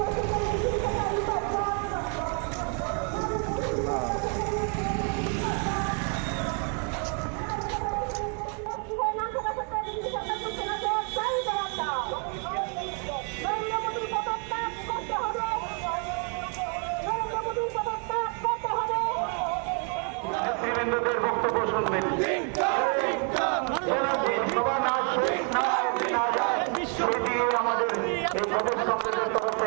নেতৃবৃন্দদের বক্তব্য শুনবেন। আমাদের এই প্রদেশ কংগ্রেসের তরফ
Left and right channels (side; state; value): left; quieter; 39.9 dB